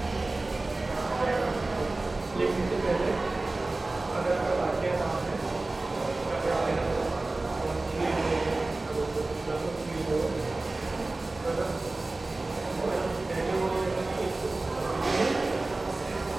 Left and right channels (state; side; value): quieter; left; 3.1 dB